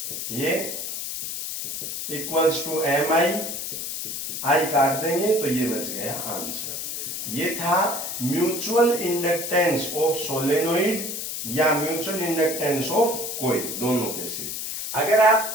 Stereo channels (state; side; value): noise; left; hiss, 5 dB below the sound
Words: ये इक्वल्स टू MI, I काट देंगे तो ये बच गया आंसर। ये था म्यूचुअल इंडक्टेंस ऑफ सोलेनोइड या म्यूचुअल इंडक्टेंस ऑफ कॉइल, दोनों के सिर्फ। अगर